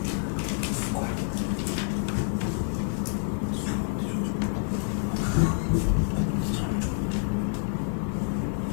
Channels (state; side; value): silent; right; digital silence